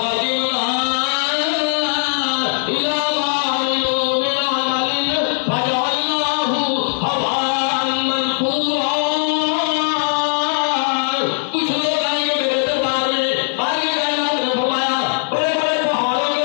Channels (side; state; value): right; silent; 62 dB below the other